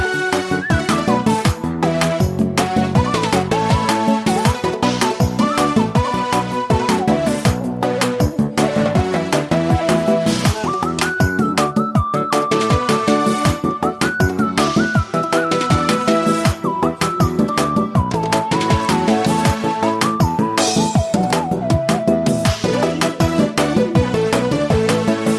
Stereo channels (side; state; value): both; identical; correlation 1.00